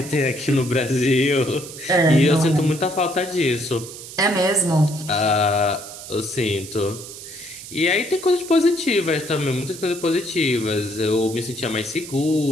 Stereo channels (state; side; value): noise; right; hiss, 13 dB below the sound